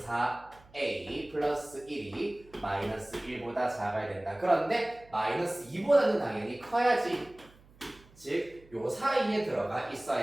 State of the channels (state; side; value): noise; right; hum, 26 dB below the sound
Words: 4a 플러스 1이 마이너스 1보다 작아야 된다. 그런데 마이너스 2보다는 당연히 커야지. 즉, 요 사이에 들어가